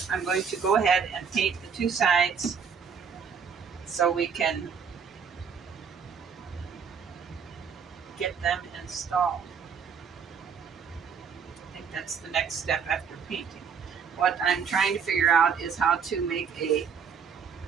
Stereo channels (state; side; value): quieter; left; 6.5 dB